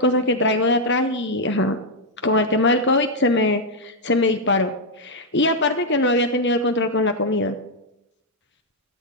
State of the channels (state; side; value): normal; both; correlation -0.03